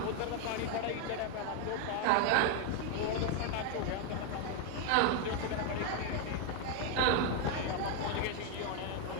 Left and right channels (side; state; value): both; different; correlation 0.01